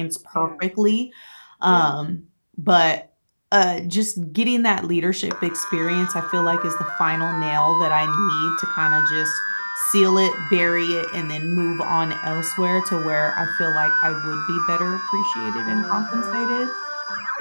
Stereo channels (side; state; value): both; inverted; correlation -1.00